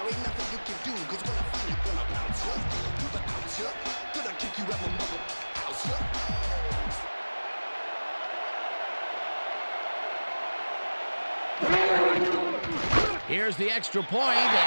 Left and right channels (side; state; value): both; inverted; correlation -1.00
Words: Here's the extra point,